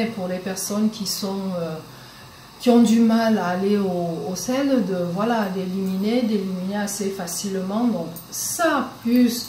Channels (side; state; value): both; identical; correlation 1.00